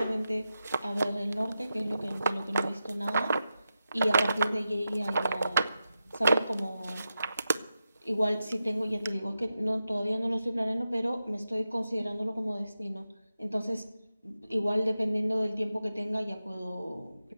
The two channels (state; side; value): inverted; both; correlation -0.89